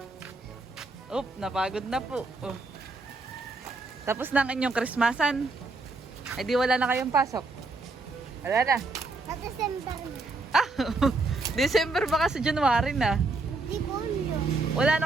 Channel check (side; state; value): left; quieter; 3.4 dB